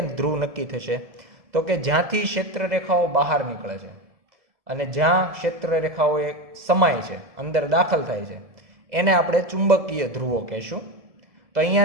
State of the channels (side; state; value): left; late; 2.0 ms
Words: ધ્રુવ નક્કી થશે? તો કે જ્યાંથી ક્ષેત્ર રેખાઓ બહાર નીકળે છે અને જ્યાં ક્ષેત્ર રેખાઓ એ સમાય છે, અંદર દાખલ થાય છે, એને આપણે ચુંબકીય ધ્રુવો કહેશું. તો